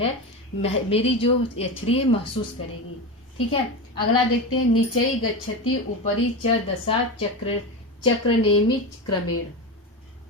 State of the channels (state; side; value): normal; both; correlation 0.21